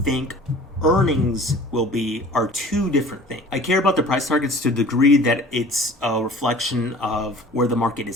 earnings will be are two different things. I care about the price targets to the degree that it's a reflection of where the market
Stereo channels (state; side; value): normal; both; correlation 0.46